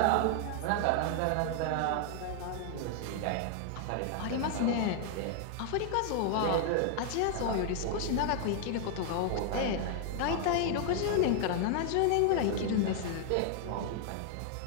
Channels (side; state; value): both; different; correlation 0.00